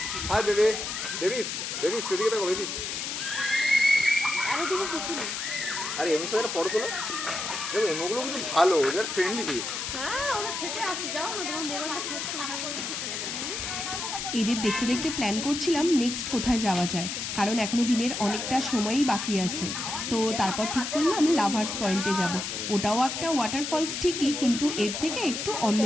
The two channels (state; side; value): noise; left; hiss, 4 dB below the sound